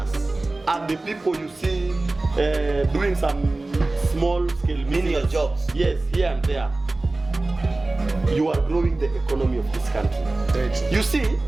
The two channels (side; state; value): left; quieter; 3.1 dB